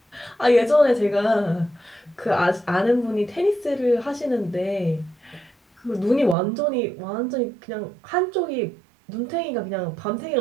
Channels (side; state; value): left; drops out; at 6.4 s